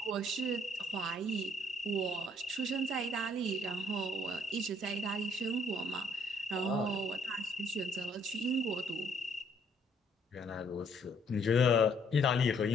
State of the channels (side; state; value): both; normal; correlation 0.66